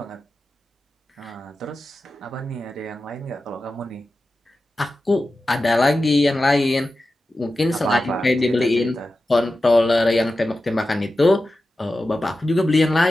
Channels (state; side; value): normal; both; correlation 0.93